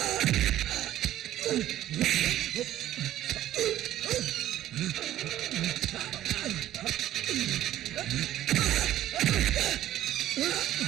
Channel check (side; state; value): left; quieter; 13.2 dB